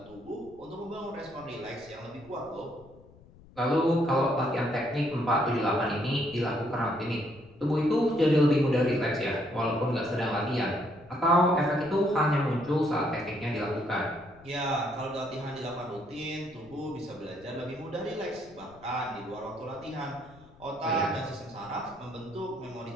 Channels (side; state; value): left; noise; rumble, 24 dB below the sound